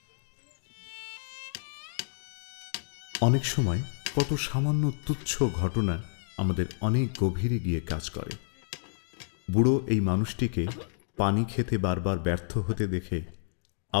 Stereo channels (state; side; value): silent; right; digital silence